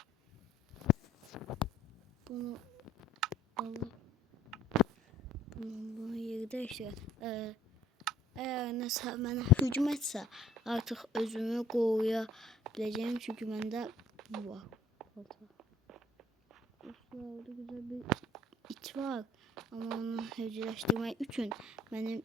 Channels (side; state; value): both; normal; correlation 0.58